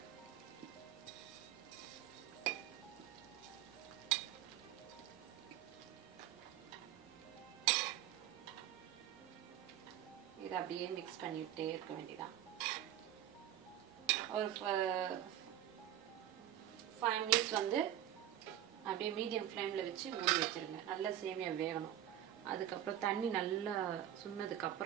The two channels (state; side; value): quieter; left; 11.8 dB